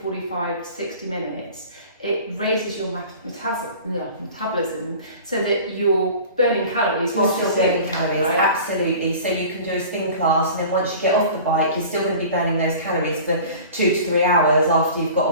45 to 60 minutes, it raises your metabolism so that you're burning calories whilst you're burning calories, right? Absolutely. So you can do a spin class, and then once you get off the bike, you're still going to be burning those calories for 2 to 3 hours after you've got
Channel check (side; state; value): both; inverted; correlation -0.41